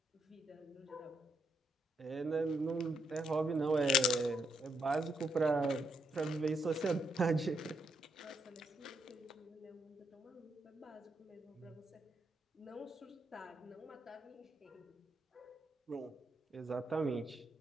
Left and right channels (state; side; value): normal; both; correlation 0.77